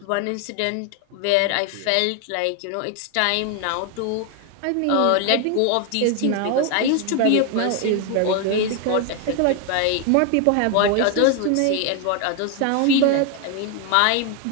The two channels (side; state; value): both; different; correlation 0.01